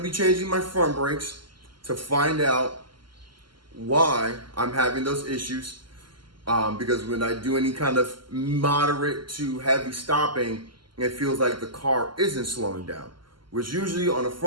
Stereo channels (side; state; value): left; late; 0.72 ms